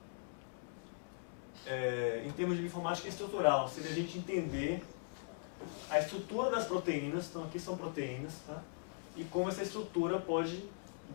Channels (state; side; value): silent; right; digital silence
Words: Em termos de informática estrutural, seria a gente entender a estrutura das proteínas, então aqui são proteínas, tá? E como essa estrutura pode